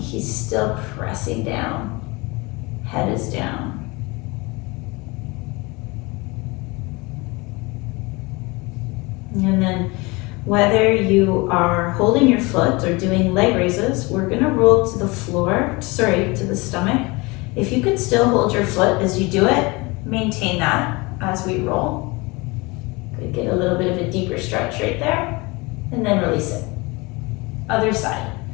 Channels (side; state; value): right; quieter; 25.2 dB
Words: still pressing down. Head is down. And then whether you are holding your foot or doing leg raises, we're gonna roll to the floor, to the stomach. If you can still hold your foot as you do it, maintain that as we roll. Could get a little bit of a deeper stretch right there, and then release it. Other side.